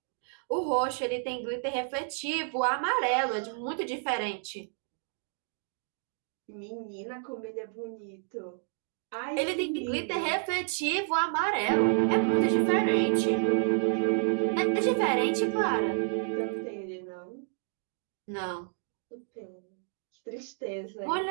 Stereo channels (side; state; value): left; silent; 58 dB below the other